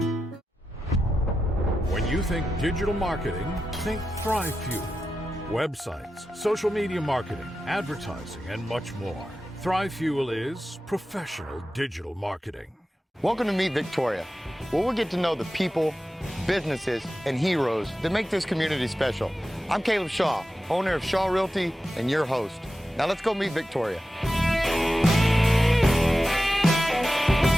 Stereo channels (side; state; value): both; normal; correlation 0.92